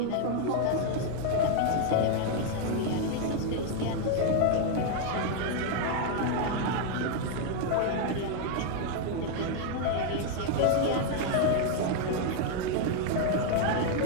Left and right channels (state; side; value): different; both; correlation 0.00